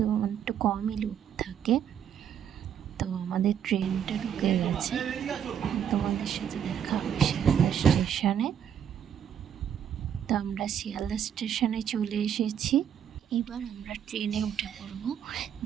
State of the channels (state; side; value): quieter; left; 9.0 dB